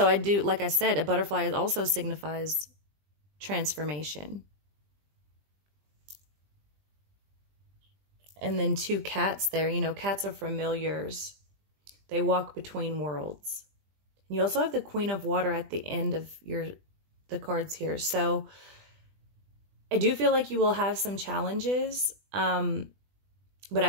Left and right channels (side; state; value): left; late; 20 ms